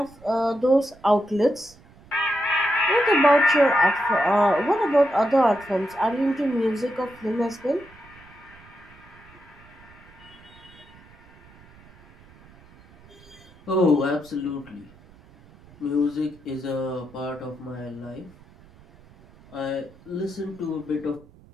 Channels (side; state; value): right; noise; rumble, 25 dB below the sound